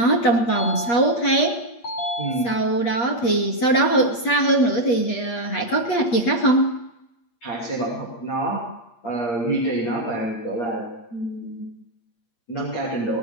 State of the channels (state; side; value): late; right; 8.5 ms